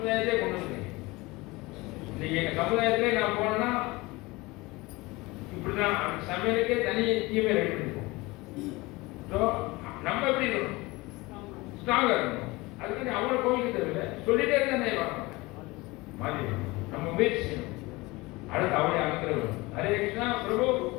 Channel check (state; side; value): quieter; right; 22.4 dB